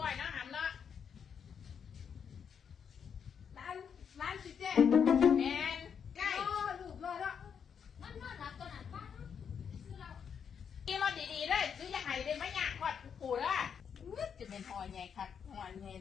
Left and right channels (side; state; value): right; quieter; 7.3 dB